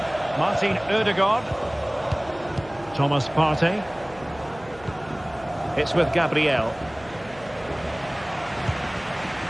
Martin Ødegaard. Thomas Partey. It's with Gabriel.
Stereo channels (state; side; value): noise; right; hum, 21 dB below the sound